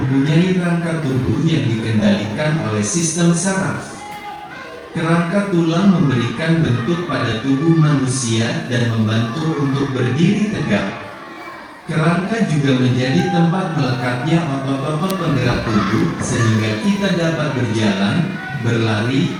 rangka tubuh yang dikendalikan oleh sistem saraf. Kerangka tulang memberikan bentuk pada tubuh manusia dan membantu untuk berdiri tegak. Kerangka juga menjadi tempat melekatnya otot-otot penggerak tubuh sehingga kita dapat berjalan, berlari,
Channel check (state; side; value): identical; both; correlation 1.00